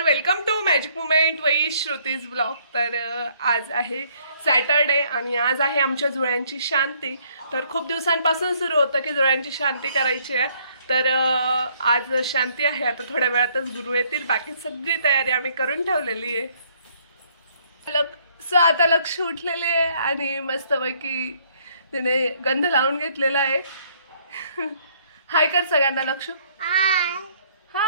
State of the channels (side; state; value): both; inverted; correlation -0.65